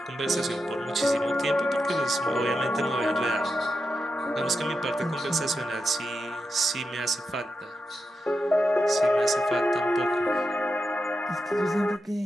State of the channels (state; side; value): normal; both; correlation 0.88